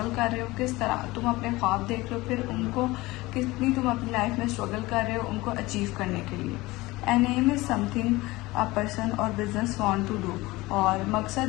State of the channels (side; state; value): right; quieter; 20.5 dB